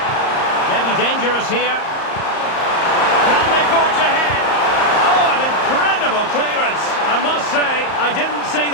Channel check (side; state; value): right; late; 34 ms